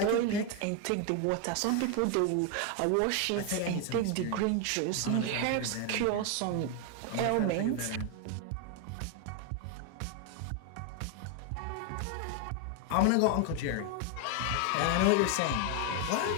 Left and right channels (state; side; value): different; both; correlation 0.01